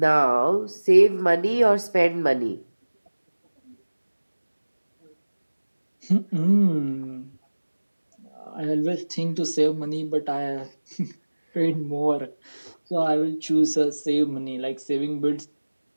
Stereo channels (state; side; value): inverted; both; correlation -1.00